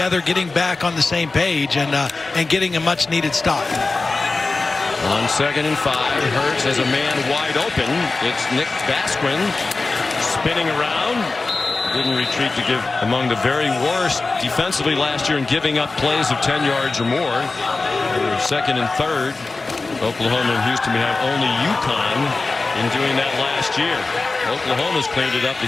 getting back on the same page, and getting a much-needed stop. On 2nd and 5, Hurts has a man wide open. It's Nick Basquin spinning around. Didn't retreat to give among the very worst defensively last year in giving up plays of 10 yards or more. 2nd and 3rd. Oklahoma and Houston have only UConn in doing that last year. Oklahoma's cleaned it up. The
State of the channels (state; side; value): quieter; right; 3.6 dB